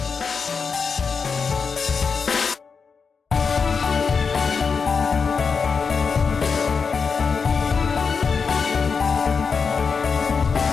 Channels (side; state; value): right; quieter; 5.4 dB